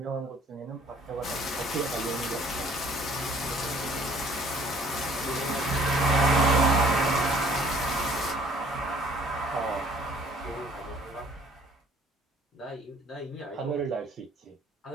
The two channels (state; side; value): normal; both; correlation 0.56